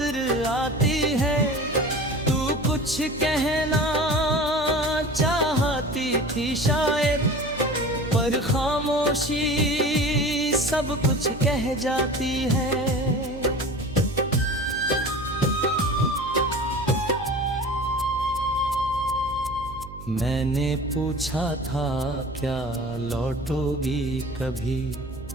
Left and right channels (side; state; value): right; noise; hum, 14 dB below the sound